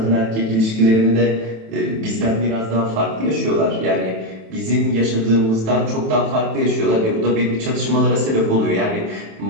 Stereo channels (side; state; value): left; late; 27 ms